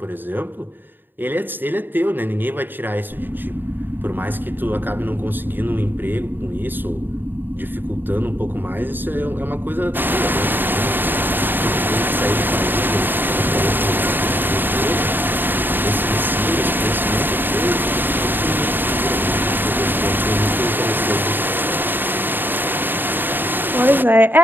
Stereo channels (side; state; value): left; late; 0.093 ms